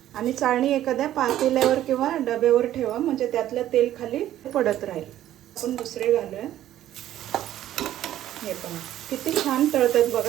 आणि चाळणी एखाद्या पातेल्यावर किंवा डब्यावर ठेवा, म्हणजे त्यातलं तेल खाली पडत राहील। आपण दुसरे घालूया। हे पहा किती छान तळतात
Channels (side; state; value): left; quieter; 12.7 dB